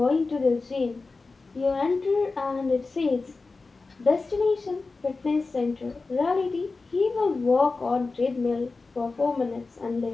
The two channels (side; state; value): right; quieter; 3.9 dB